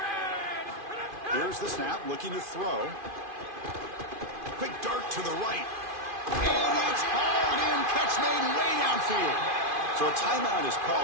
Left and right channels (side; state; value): left; late; 2.5 ms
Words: Here's the snap, looking to throw. Quick dart to the right. And it's hauled in. Catch made way downfield. So a timeout is